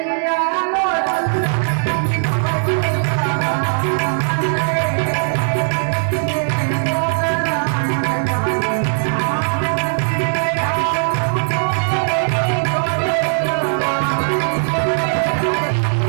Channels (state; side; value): silent; left; 67 dB below the other